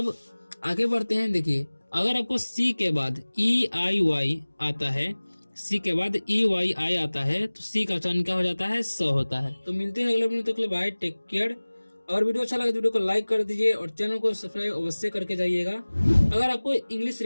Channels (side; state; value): both; inverted; correlation -1.00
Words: आगे बढ़ते हैं। देखिए अगर आपको सी के बाद ई आई वाई आता है, सी के बाद ई वाई आई आता है तो सी का उच्चारण क्या हो जाता है? स होता है। तो मिलते हैं अगले वीडियो तक के लिए, बाय, टेक केयर। और वीडियो अच्छा लगे तो वीडियो को लाइक कर दीजिए और चैनल को सब्सक्राइब अवश्य करके जाइएगा। अगर आपको इंग्लिश